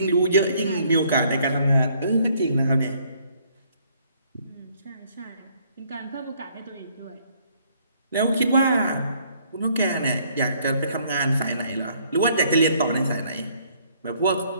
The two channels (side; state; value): both; inverted; correlation -0.64